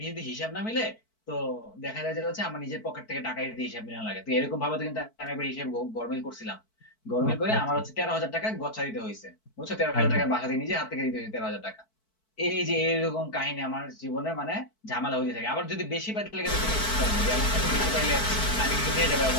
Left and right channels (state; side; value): late; right; 4.6 ms